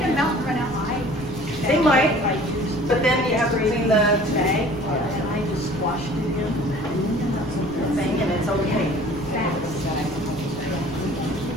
melt and run out high? They might, but then you have to clean the And I just squashed it in. thing and it's okay.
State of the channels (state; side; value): noise; left; rumble, 17 dB below the sound